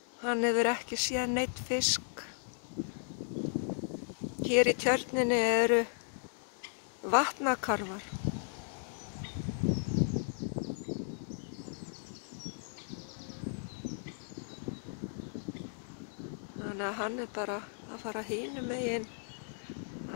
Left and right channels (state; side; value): silent; right; digital silence